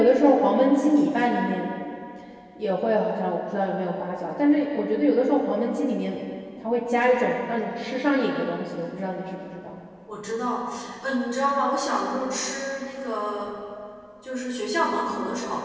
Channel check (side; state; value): both; identical; correlation 1.00